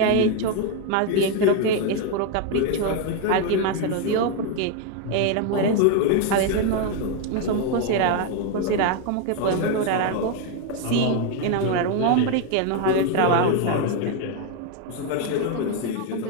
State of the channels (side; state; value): both; different; correlation 0.01